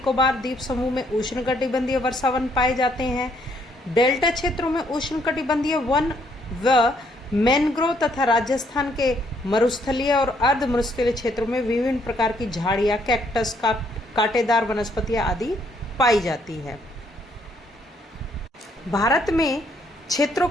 द्वीप समूह में उष्ण कटिबंधीय वर्षावन पाए जाते हैं। डेल्टा क्षेत्रों में उष्ण कटिबंधीय वन व मैनग्रोव तथा राजस्थान के मरुस्थलीय और अर्ध मरुस्थलीय क्षेत्रों में विभिन्न प्रकार की झाड़ियां, कैक्टस, कांटेदार वनस्पतियां आदि पाई जाती है। भारत में क्षेत्रों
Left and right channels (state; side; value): normal; both; correlation 0.69